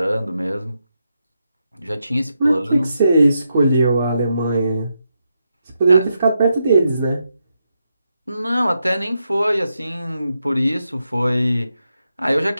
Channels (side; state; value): both; inverted; correlation -0.84